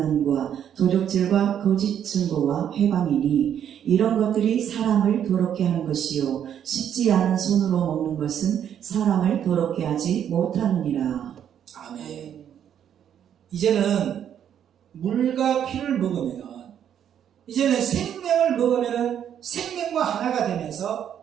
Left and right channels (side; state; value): left; quieter; 9.4 dB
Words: 도적질과 거짓 증거와 회방이니 이런 것들이 사람을 더럽게 하는 것이요 씻지 않은 손으로 먹는 것은 사람을 더럽게 하지 못하느니라. 아멘. 이제는 물과 피를 먹으면 이제는 생명을 먹으면 생명과 하나가